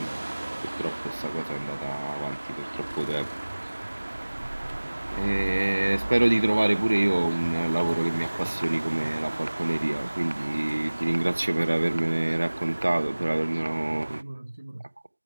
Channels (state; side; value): inverted; both; correlation -1.00